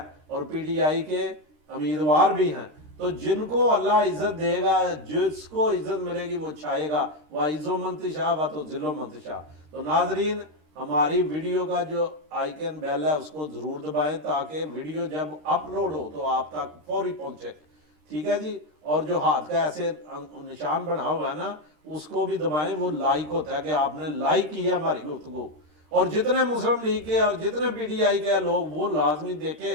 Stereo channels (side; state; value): left; late; 13 ms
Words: اور پی ٹی آئی کے امیدوار بھی ہیں. تو جن کو اللہ عزت دے گا، جس کو عزت ملے گی وہ چھائے گا. وَعِزُّ مَن تَشَاءُ وَتُذِلُّ مَن تَشَاءُ. تو ناظرین، ہماری ویڈیو کا جو آئیکن بیل ہے اس کو ضرور دبائیں تاکہ ویڈیو جب اپلوڈ ہو تو آپ تک فوری پہنچے. ٹھیک ہے جی. اور جو ہاتھ کا ایسے نشان بنا ہوا ہے نا اس کو بھی دبائیں، وہ لائک ہوتا ہے کہ آپ نے لائک کیا ہماری گفتگو. اور جتنے مسلم لیگ کے اور جتنے پی ٹی آئی کے لوگ وہ لازمی